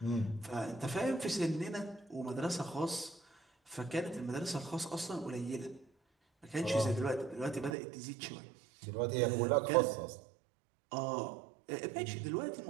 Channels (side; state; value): left; drops out; at 7.8 s